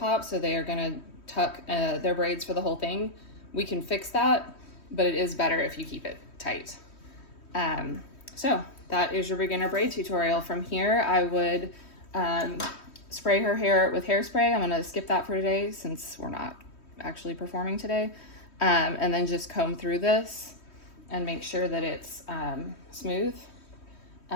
so they are gonna tuck their braids for the whole thing, we can fix that, but it is better if you keep it tight. So that is your beginner braid tutorial. From here, I would spray her hair with hairspray. I'm gonna skip that for today since we're not actually performing today. And then just comb through this and make sure that it's smooth.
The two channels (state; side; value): late; right; 3.1 ms